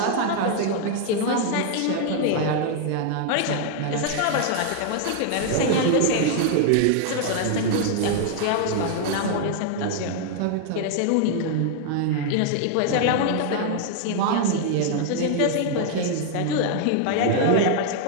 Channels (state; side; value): different; both; correlation 0.00